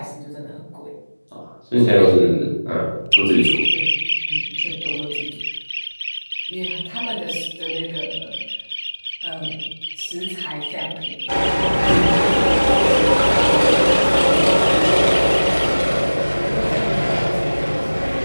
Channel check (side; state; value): both; inverted; correlation -1.00